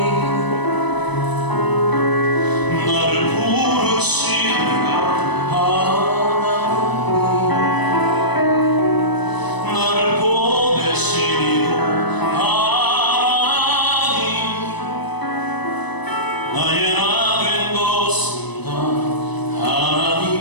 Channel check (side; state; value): right; late; 1.0 ms